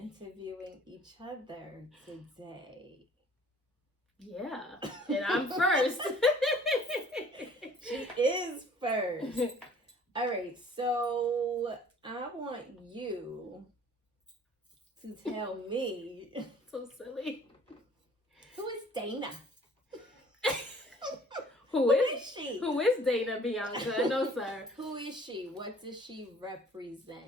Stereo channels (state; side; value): normal; both; correlation 0.54